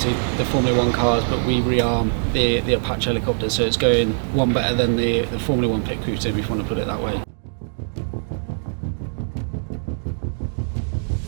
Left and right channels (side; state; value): left; silent; digital silence